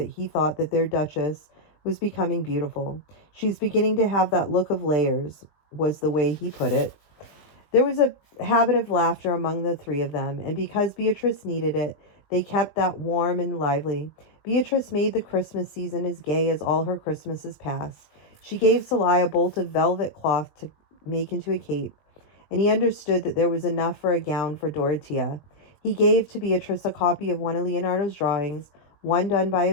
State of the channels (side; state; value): right; late; 20 ms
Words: he thought that their Duchess was becoming beautiful. She's beginning to have that look of layers, was the way he put it. There was a habit of laughter among the three of them, and because Beatrice needed it, they kept that warm and lively. Beatrice made the Christmas season as gay as all her Christmases past. She gave Sly a bolt of velvet cloth to make into a cape, and he understood that there was enough for a gown for Dorothea. He gave to Beatrice a copy of one of Leonardo's drawings, one done by